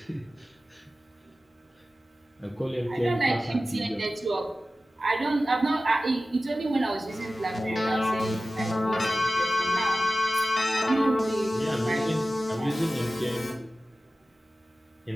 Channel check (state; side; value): normal; both; correlation 0.95